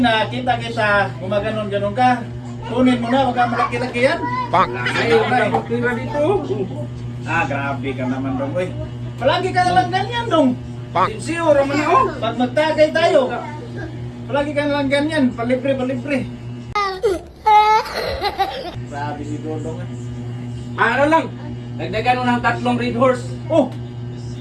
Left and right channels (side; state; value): both; identical; correlation 1.00